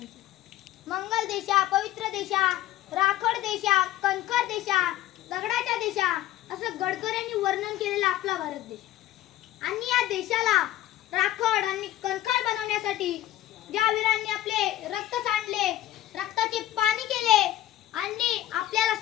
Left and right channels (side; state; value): right; quieter; 14.2 dB